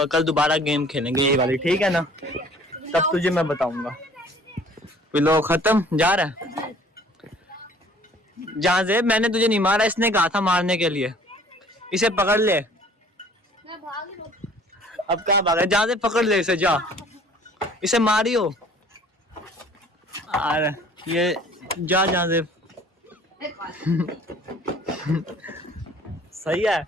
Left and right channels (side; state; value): both; normal; correlation 0.52